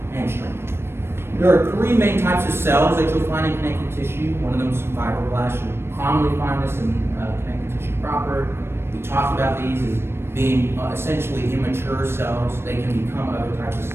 and strength. There are three main types of cells that you'll find in connective tissue. One of them is fibroblasts. You'll commonly find this in connective tissue proper. We talked about these as being essentially immature cells. They can become other types of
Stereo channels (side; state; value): left; late; 0.12 ms